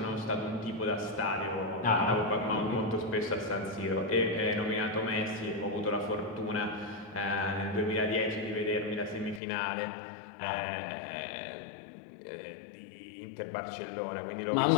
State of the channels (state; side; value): drops out; right; at 9.4 s